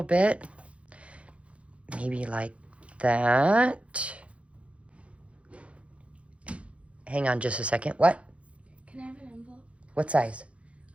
bit. Maybe like that. Hang on just a second. What? Can I have an envelope? What size?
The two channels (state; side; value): late; left; 0.062 ms